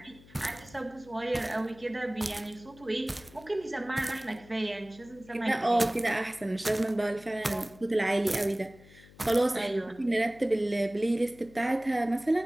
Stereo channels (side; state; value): left; noise; hum, 23 dB below the sound